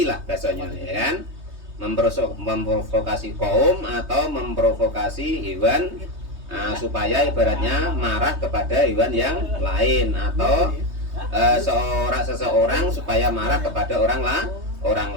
lah bahasanya ya kan. Memprovokasi kaum atau memprovokasi hewan supaya ibaratnya marah kepada hewan yang lain atau seseorang supaya marah kepada orang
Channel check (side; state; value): left; late; 3.2 ms